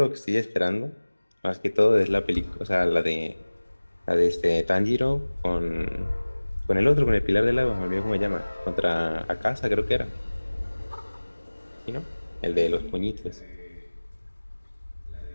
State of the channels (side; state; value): both; inverted; correlation -1.00